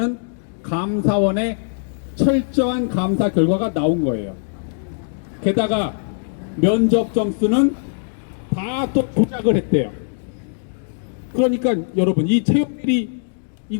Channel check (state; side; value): silent; right; digital silence